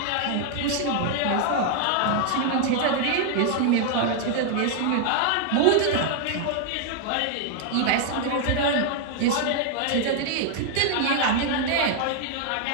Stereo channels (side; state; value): both; different; correlation 0.00